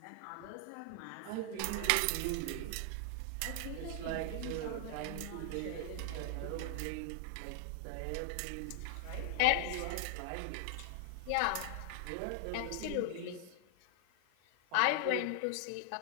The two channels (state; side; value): different; both; correlation 0.00